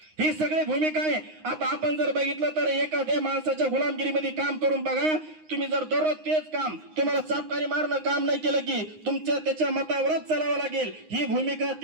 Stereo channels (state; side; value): late; left; 9.6 ms